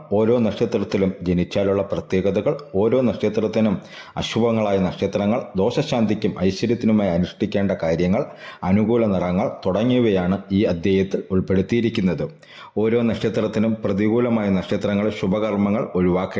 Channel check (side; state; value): both; identical; correlation 1.00